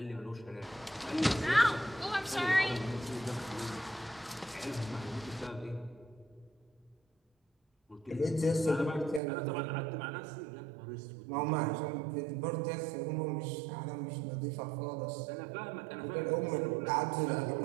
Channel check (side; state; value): left; drops out; at 9.2 s